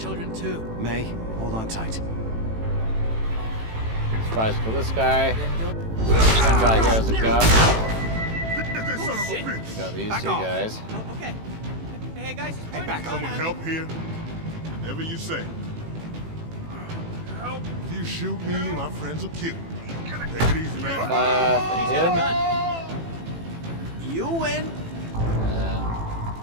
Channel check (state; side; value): late; left; 18 ms